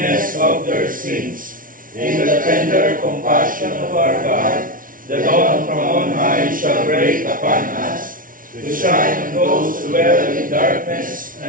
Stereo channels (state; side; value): late; left; 0.39 ms